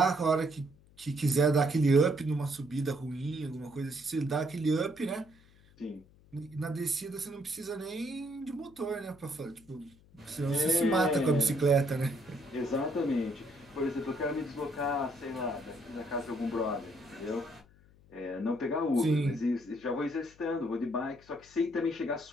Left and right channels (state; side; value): noise; left; hum, 27 dB below the sound